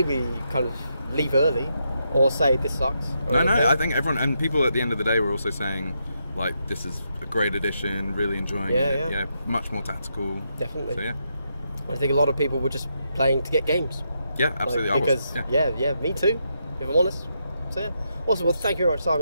kind of leave early or say this sucks. No, I think everyone, and people at the end of the day were also saying, like, this is a great addition, really enjoying it. Yeah, much more tactical. Definitely. So, yeah. I think a lot of people were just playing to get games. Yeah, absolutely. Me too, if I'm honest. So, yeah. Awesome. Well, thank you very much,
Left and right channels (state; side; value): inverted; both; correlation -0.81